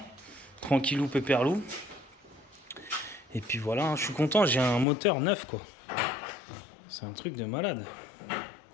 Tranquillou, pépèrlou. Et puis voilà, hein. Je suis content, j'ai un moteur neuf, quoi. C'est un truc de malade.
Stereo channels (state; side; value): drops out; right; at 4.9 s